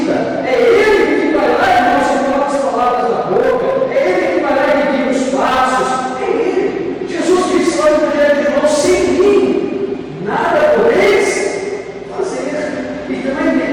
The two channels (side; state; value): both; identical; correlation 1.00